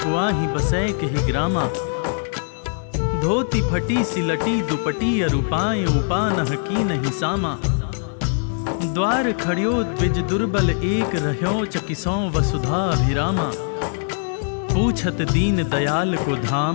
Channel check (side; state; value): right; silent; digital silence